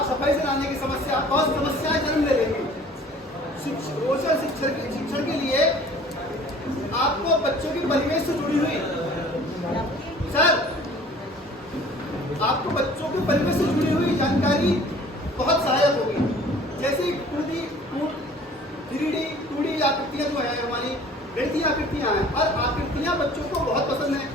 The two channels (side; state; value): both; normal; correlation 0.50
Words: सफाई से लाने की समस्या, बहुत समस्याएं जन्म ले लेंगी। रोचक शिक्षण के लिए आपको बच्चों के परिवेश से जुड़ी हुई आपको बच्चों के परिवेश से जुड़ी हुई जानकारी बहुत सहायक होगी। जैसे 2D, 3D, 2D आकृतियां जो है हमारी गणितीय आकृतियां हैं, और आकृतियां बच्चों को बहुत पसंद है।